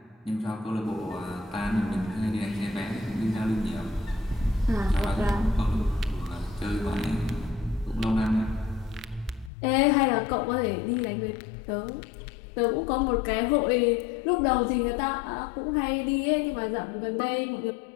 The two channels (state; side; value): drops out; right; at 9.5 s